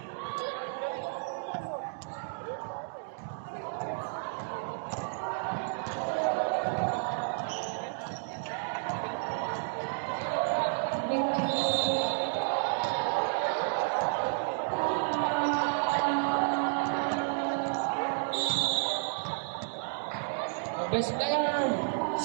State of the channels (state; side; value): silent; left; digital silence